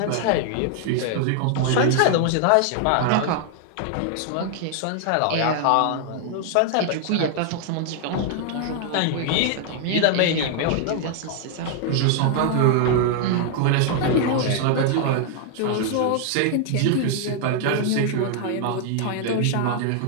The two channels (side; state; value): both; different; correlation 0.00